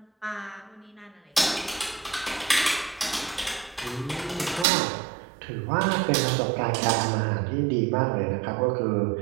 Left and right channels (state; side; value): drops out; left; at 4.7 s